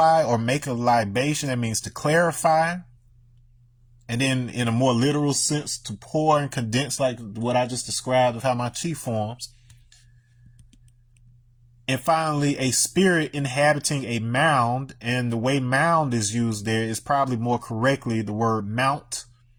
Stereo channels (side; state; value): both; identical; correlation 1.00